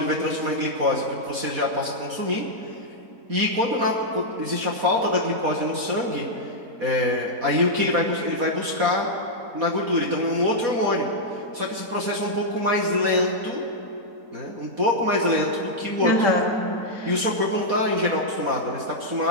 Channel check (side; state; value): left; late; 4.2 ms